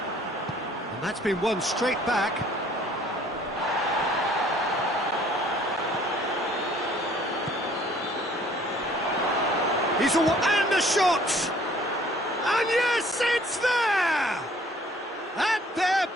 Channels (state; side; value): normal; both; correlation 0.57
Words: And that's been won straight back. He's and the shot! And yes, it's there! And they're